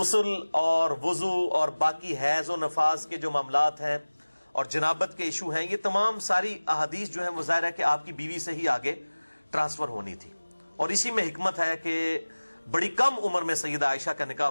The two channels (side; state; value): both; inverted; correlation -1.00